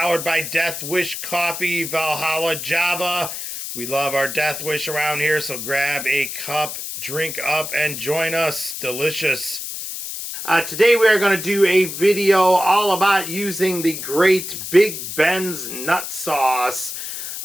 by Death Wish Coffee, Valhalla Java. We love our Death Wish around here, so grab a cup, drink up, and join us. Delicious. Today we are going to do a video all about using the great bigbensnutsauce.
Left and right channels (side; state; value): left; noise; hiss, 7 dB below the sound